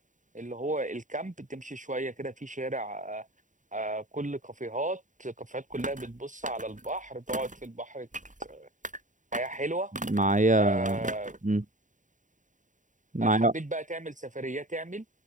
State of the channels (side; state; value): left; late; 0.37 ms